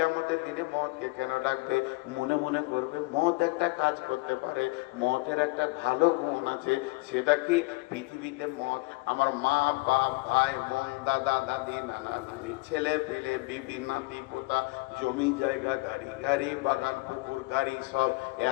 দিনে মতকে কেন ডাকবে? মনে মনে করবে মত একটা কাজ করতে পারে, মতের একটা ভালো গুণ আছে। সেটা কি? পৃথিবীতে মত আমার মা বাপ ভাই বোন দাদা দাদি নানা নানি ছেলে পেলে বিবি নাতি পোতা জমি জায়গা গাড়ি গাড়ি বাগান পুকুর গাড়ি সব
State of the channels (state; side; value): quieter; right; 24.5 dB